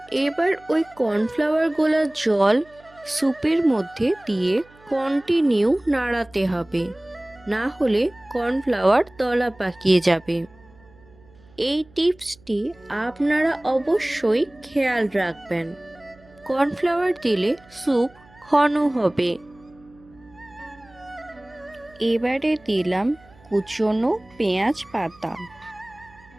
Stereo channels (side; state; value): right; noise; hum, 27 dB below the sound